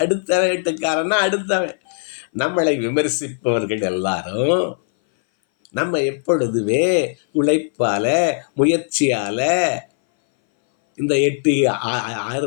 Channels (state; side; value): silent; right; 61 dB below the other